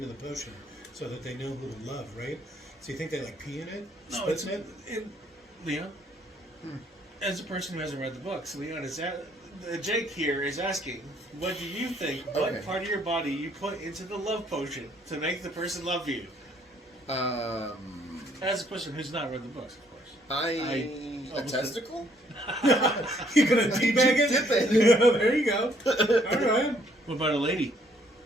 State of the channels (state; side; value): normal; both; correlation 0.66